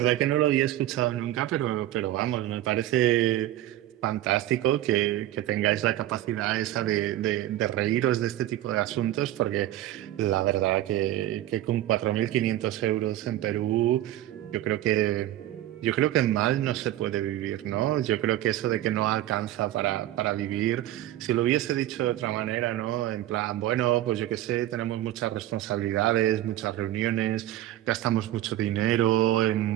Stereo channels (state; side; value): quieter; left; 14.0 dB